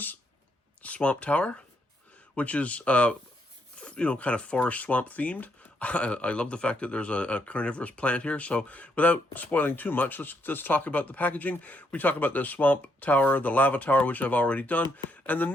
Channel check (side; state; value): both; normal; correlation 0.75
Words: Swamp Tower, which is kind of forest swamp themed. I love the fact that there's a carnivorous plant here. So without spoiling too much, let's talk about the packaging. We talk about the Swamp Tower, the Lava Tower, which I've already done, and the